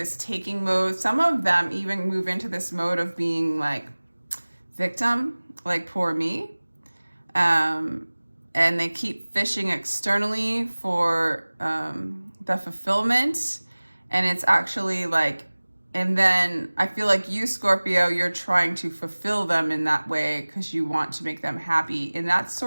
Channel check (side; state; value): both; inverted; correlation -1.00